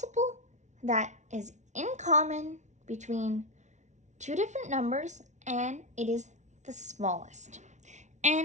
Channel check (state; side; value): late; left; 0.34 ms